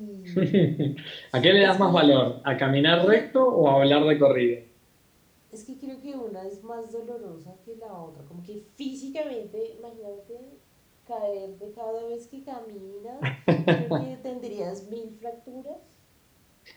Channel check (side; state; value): both; identical; correlation 1.00